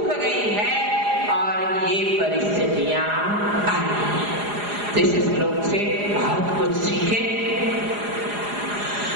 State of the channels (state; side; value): late; left; 4.9 ms